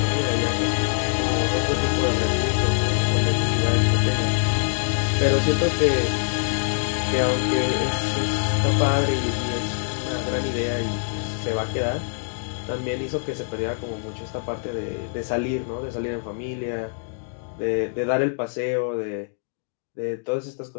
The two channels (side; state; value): right; silent; digital silence